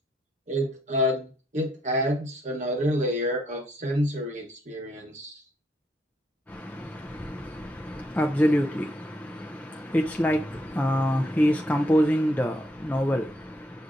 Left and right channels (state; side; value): normal; both; correlation 0.74